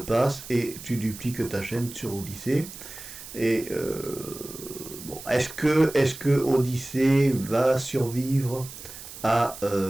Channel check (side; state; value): right; noise; hiss, 14 dB below the sound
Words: et tu dupliques ta chaîne sur Odyssée. Et bon, est-ce que Odyssée va survivre à